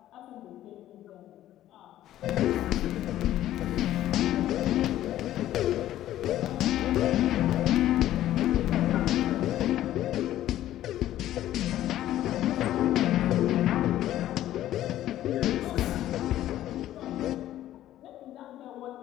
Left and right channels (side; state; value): right; quieter; 13.2 dB